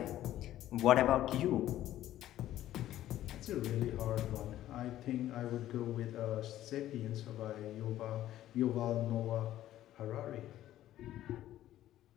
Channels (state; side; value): quieter; right; 13.3 dB